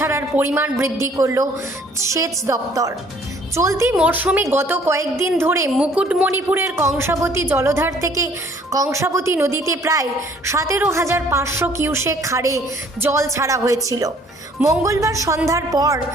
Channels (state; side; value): normal; both; correlation 0.58